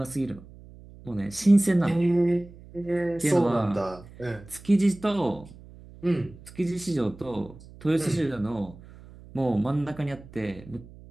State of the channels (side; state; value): right; noise; hum, 20 dB below the sound